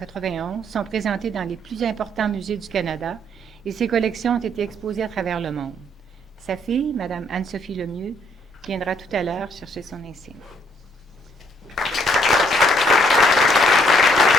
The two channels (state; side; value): normal; both; correlation 0.68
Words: sont présentées dans les plus importants musées du Canada et ses collections ont été exposées à travers le monde. Sa fille, Mme Anne-Sophie Lemieux, viendra tout à l'heure chercher son insigne.